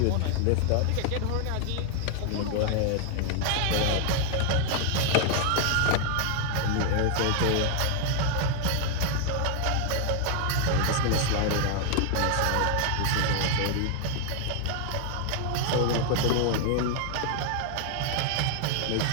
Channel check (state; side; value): different; both; correlation 0.00